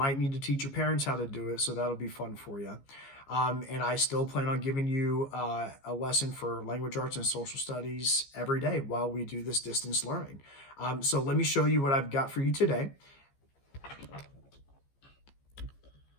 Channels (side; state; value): right; late; 15 ms